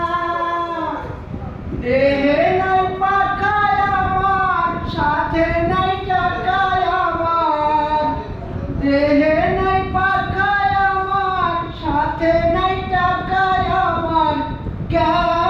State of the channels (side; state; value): both; identical; correlation 1.00